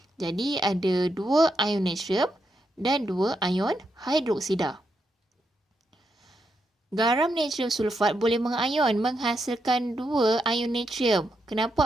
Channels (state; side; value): normal; both; correlation 0.82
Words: Jadi ada 2 ion natrium dan 2 ion hidroksida. Garam natrium sulfat boleh mengayon menghasilkan 2 ion natrium.